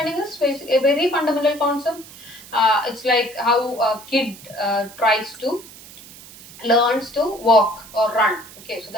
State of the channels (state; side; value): noise; right; hiss, 19 dB below the sound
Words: is a very fundamental concept. It's like how a kid learns to walk or run. Okay, so